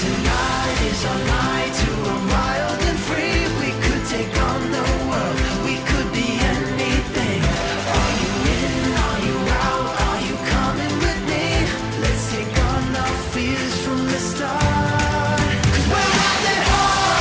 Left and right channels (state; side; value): identical; both; correlation 1.00